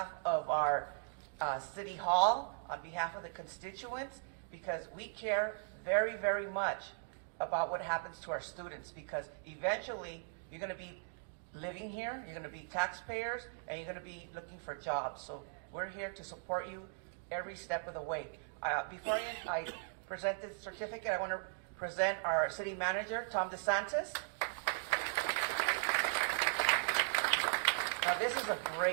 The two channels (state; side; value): silent; left; digital silence